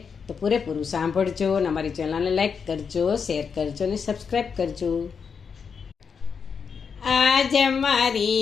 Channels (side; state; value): right; quieter; 6.1 dB